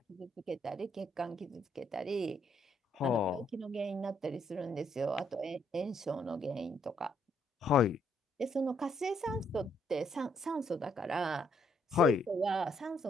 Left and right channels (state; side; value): normal; both; correlation 0.71